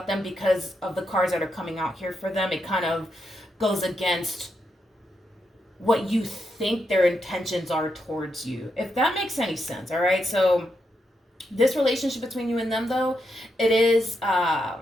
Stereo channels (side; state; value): both; normal; correlation 0.83